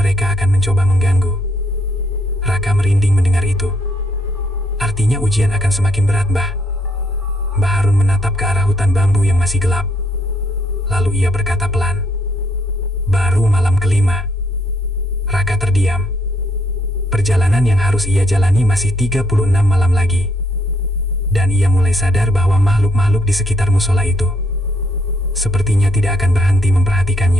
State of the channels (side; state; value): both; normal; correlation 0.70